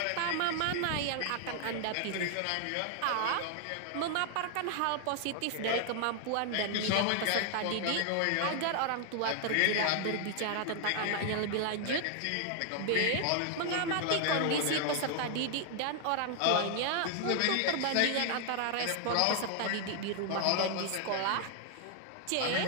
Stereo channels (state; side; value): different; both; correlation 0.00